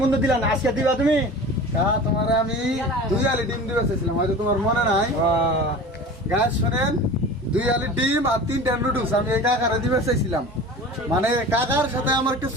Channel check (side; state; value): both; normal; correlation 0.37